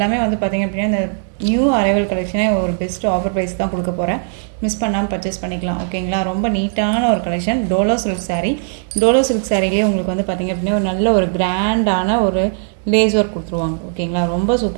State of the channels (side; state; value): left; silent; digital silence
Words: வந்து பார்த்திங்க அப்படின்னா இந்த நியூ அரைவல் கலெக்ஷனே ஒரு பெஸ்ட்டு ஆஃபர் ப்ரைஸ் தான் கொடுக்க போகிறேன். மிஸ் பண்ணாமல் பர்ச்சேஸ் பண்ணிக்கலாம். ஓகேங்களா? ரொம்ப நீட்டான ஒரு collection. Dola silk sari. Dola silk சாரீலேயே உங்களுக்கு வந்து பார்த்திங்க அப்படின்னா ஒரு நல்ல ஒரு கிராண்டான ஒரு லேஸ் ஒர்க் கொடுத்துருவாங்க. ஓகேங்களா? ரொம்ப